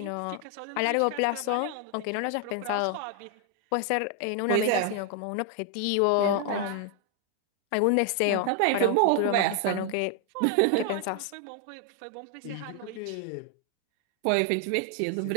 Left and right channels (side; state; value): both; different; correlation 0.00